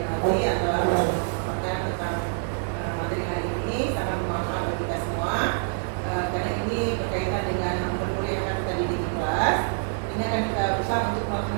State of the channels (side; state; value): left; silent; digital silence